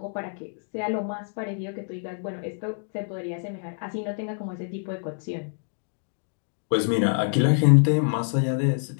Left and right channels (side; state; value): right; silent; 60 dB below the other